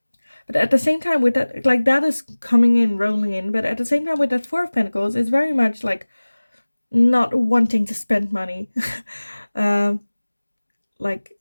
But at the same time, with that, like that is coming in, rolling in. But at the same time, with that Four of Pentacles, it's very much like not wanting to spend money, um, like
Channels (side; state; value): both; inverted; correlation -1.00